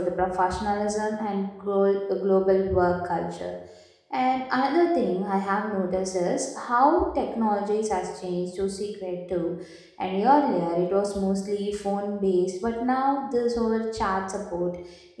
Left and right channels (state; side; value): identical; both; correlation 1.00